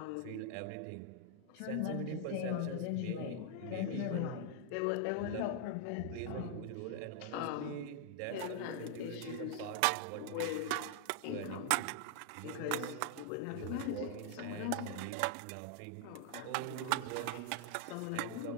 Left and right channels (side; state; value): both; different; correlation 0.00